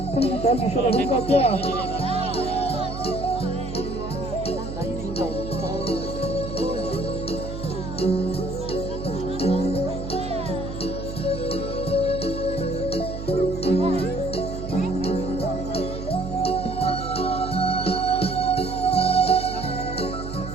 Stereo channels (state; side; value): noise; right; hum, 8 dB below the sound